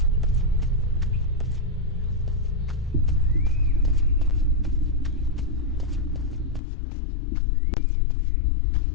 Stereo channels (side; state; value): right; drops out; at 6.6 s